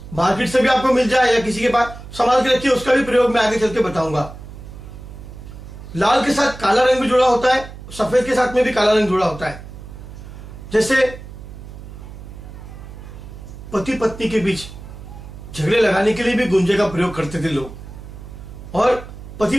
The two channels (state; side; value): noise; right; hum, 14 dB below the sound